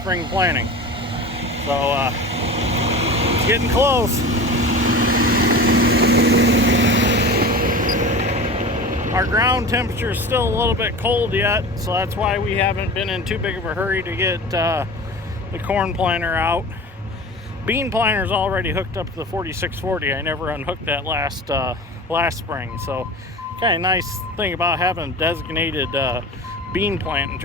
planting. So it's getting close. Our ground temperature is still a little bit cold yet, so that's why we haven't been in too big of a hurry to get the corn planter out. Bean planter is already hooked up to the 4640. I never unhooked that last spring. So kind of nice thing about having designated bean planting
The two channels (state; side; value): normal; both; correlation 0.34